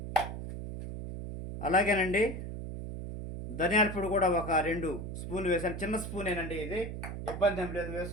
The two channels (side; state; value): right; noise; hum, 7 dB below the sound